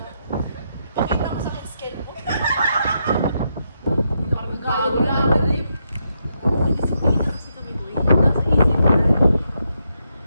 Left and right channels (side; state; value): both; inverted; correlation -0.81